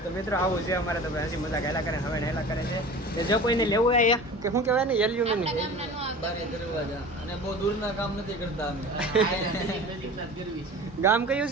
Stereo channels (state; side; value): normal; both; correlation 0.38